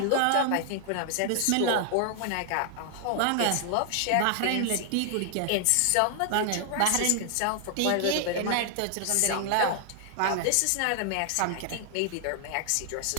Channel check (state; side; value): different; both; correlation 0.00